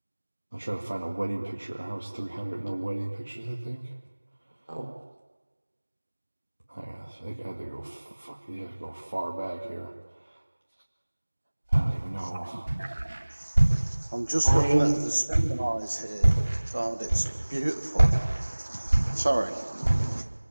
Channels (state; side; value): inverted; both; correlation -1.00